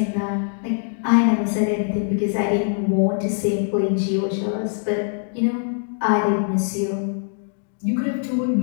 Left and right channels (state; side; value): silent; right; 64 dB below the other